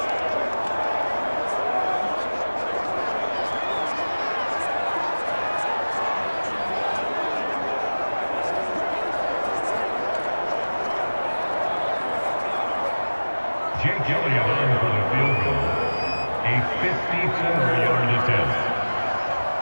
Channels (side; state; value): both; inverted; correlation -1.00